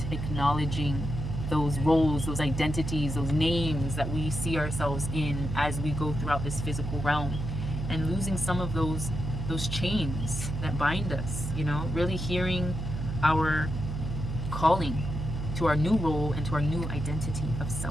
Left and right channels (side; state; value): right; noise; hum, 4 dB below the sound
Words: acknowledging those roles, those identities, those names that we see ourselves in as we go throughout this physical realm, and losing some of those chains that bind us, you know, really hearing our calling to our new role and to our new identity of